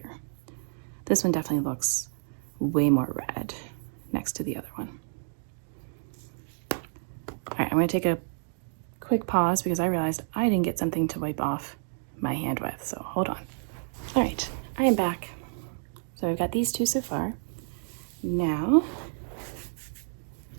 This one definitely looks way more red next to the other one. All right, I'm gonna take a quick pause because I realized I didn't get something to wipe off my hand with, so hold on. All right, I am back. So I've got these two so far. Now,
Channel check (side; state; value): left; silent; digital silence